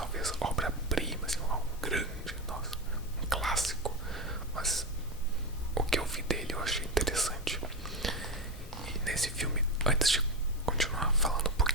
obra-prima, assim, algo grande, nossa, um clássico. Mas o que eu vi dele eu achei interessante. E nesse filme, antes de continuar falando um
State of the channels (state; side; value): normal; both; correlation 0.15